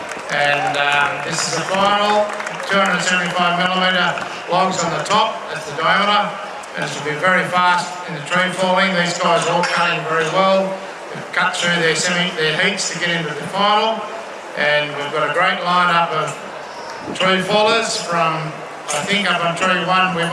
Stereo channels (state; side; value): identical; both; correlation 1.00